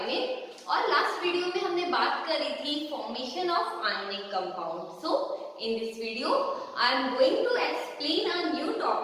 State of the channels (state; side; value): identical; both; correlation 1.00